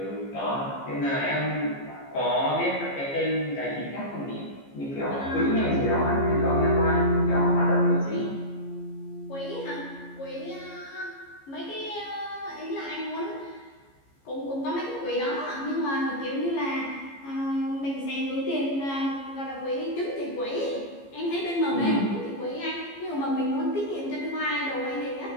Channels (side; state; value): right; late; 15 ms